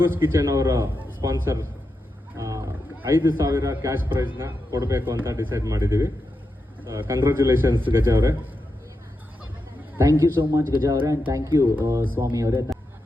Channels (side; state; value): both; normal; correlation 0.87